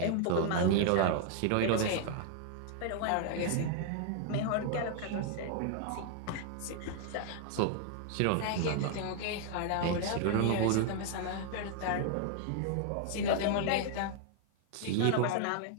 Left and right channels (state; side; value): different; both; correlation 0.00